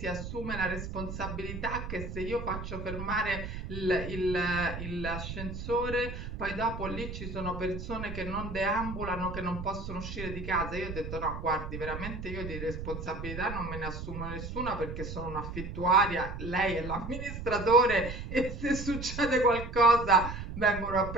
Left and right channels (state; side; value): noise; right; rumble, 7 dB below the sound